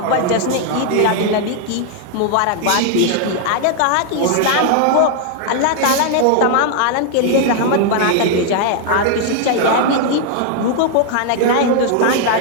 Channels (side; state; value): both; different; correlation 0.00